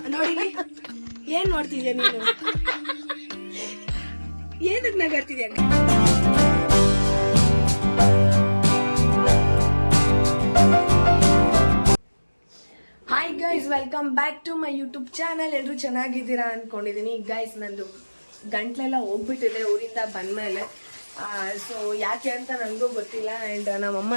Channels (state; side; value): inverted; both; correlation -1.00